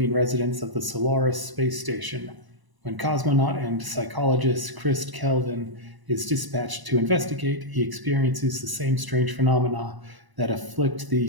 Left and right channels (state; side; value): late; left; 1.0 ms